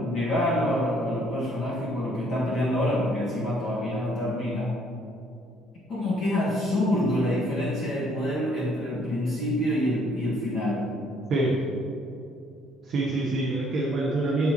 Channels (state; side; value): normal; both; correlation 0.65